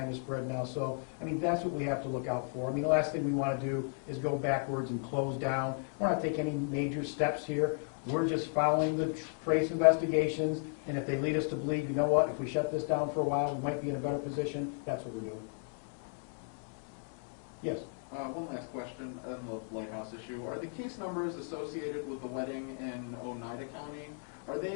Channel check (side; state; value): right; silent; 55 dB below the other